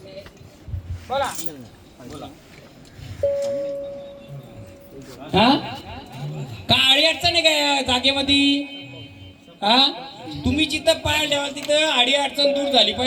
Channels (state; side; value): identical; both; correlation 1.00